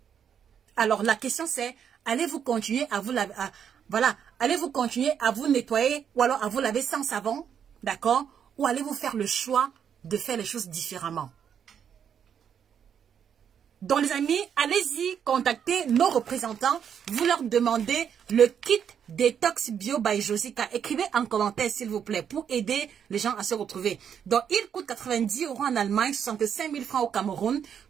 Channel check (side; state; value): left; quieter; 8.2 dB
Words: Alors, la question c'est, allez-vous continuer à vous laver, allez-vous continuer à vous nettoyer ou alors à vous laver sans savon, d'accord? Ou allez-vous faire le choix de faire les choses différemment? Donc les amis, allez-y, contactez nos représentants, vous leur demandez le kit Détox Bio by Josica. Écrivez en commentaire s'il vous plaît pour aider les gens à se retrouver. Donc il coûte 90 € en Allemagne, 65 000 francs au Cameroun.